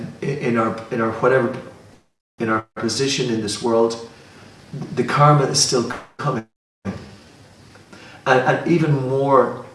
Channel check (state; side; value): identical; both; correlation 1.00